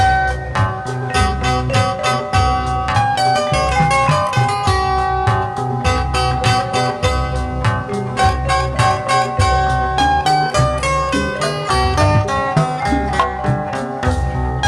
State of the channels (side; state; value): both; identical; correlation 1.00